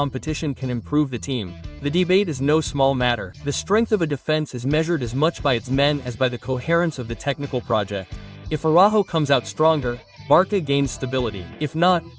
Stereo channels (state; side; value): identical; both; correlation 1.00